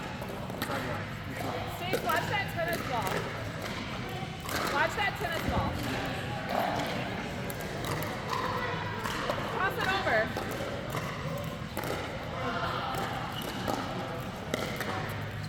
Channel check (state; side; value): identical; both; correlation 1.00